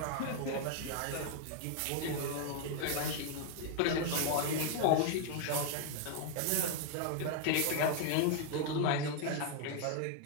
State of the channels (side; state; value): both; different; correlation 0.00